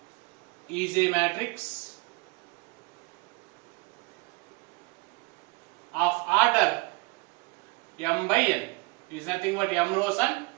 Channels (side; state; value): left; quieter; 28.8 dB